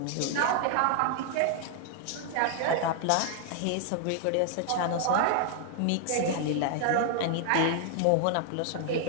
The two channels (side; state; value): both; different; correlation 0.00